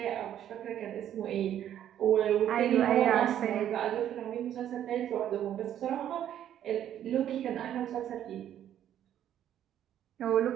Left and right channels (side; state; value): left; quieter; 10.8 dB